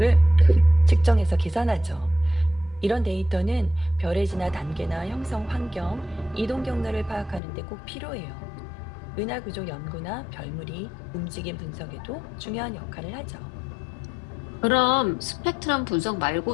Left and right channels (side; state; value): right; drops out; at 7.4 s